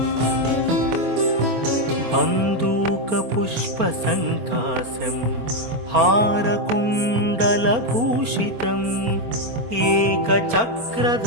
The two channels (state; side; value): late; left; 24 ms